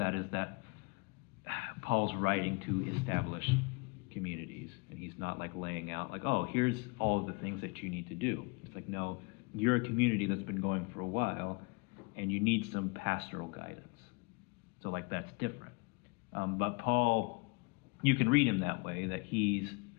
is that Paul's writing to establish communities, and he's not like laying out like, oh, here's all of the things that you need to do. It's like, no, you're a community that's been going for a while, and you need some pastoral guidance. So like that's different. But Paul, you can read him that way, that he's,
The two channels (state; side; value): quieter; right; 30.1 dB